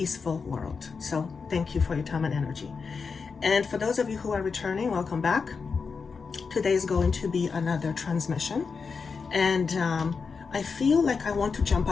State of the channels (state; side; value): quieter; right; 5.2 dB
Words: world. So thank you for your time and energy. And for those of you who are returning, welcome back. Today is going to be another transmission. And I feel like I want to jump